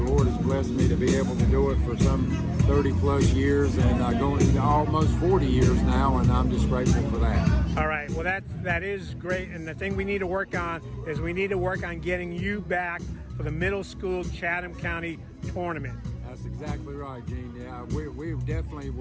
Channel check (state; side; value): identical; both; correlation 1.00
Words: Lord has blessed me to be able to do it for some 30-plus years, and going into almost 40 years now, and I'm just grateful for that. All right, well, that is great, and the thing we need to work on is we need to work on getting you back for the middle school Chatham County tournament. That's exactly right, Gene. Yeah, we definitely